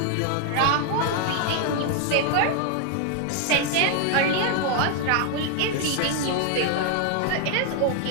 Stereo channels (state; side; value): different; both; correlation 0.01